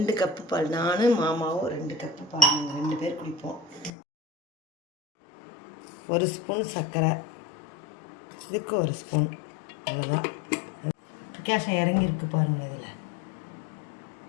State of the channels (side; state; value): right; drops out; at 3.9 s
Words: கப்பு பால். நானும் மாமாவும் 2 கப்பு பால், நாங்கள் 2 பேர் குடிப்போம். 1 ஸ்பூன் சர்க்கரை, இதுக்கு 1 ஸ்பூன், அவ்வளோதான். கேஷம் இறங்கியிருக்கு பாருங்கள். இதில்